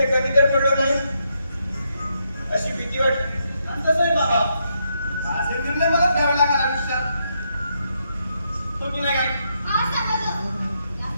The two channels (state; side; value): inverted; both; correlation -0.79